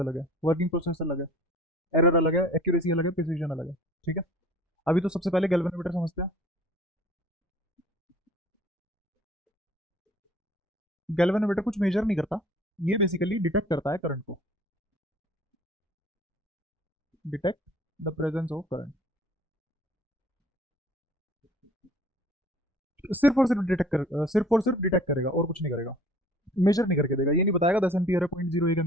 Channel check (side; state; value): both; normal; correlation 0.50